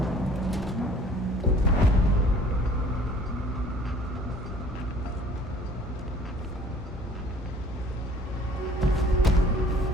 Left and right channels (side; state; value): both; normal; correlation 0.53